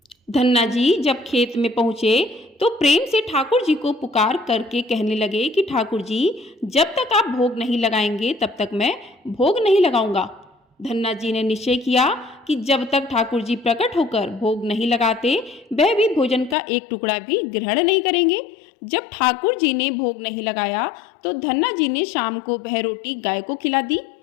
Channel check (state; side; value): drops out; right; at 16.6 s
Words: धन्ना जी जब खेत में पहुंचे तो प्रेम से ठाकुर जी को पुकार करके कहने लगे कि ठाकुर जी, जब तक आप भोग नहीं लगाएंगे तब तक मैं भोग नहीं लगाऊंगा। धन्ना जी ने निश्चय किया कि जब तक ठाकुर जी प्रकट होकर भोग नहीं लगाते वह भी भोजन का एक टुकड़ा भी ग्रहण नहीं करेंगे। जब ठाकुर जी ने भोग नहीं लगाया तो धन्ना जी ने शाम को वह रोटी गाय को खिला दी।